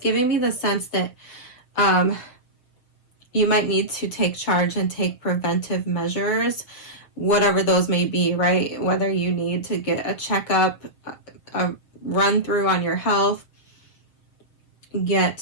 me the sense that you might need to take charge and take preventive measures, whatever those may be, right? Whether you need to get a checkup, a run through on your health,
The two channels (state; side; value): late; right; 7.0 ms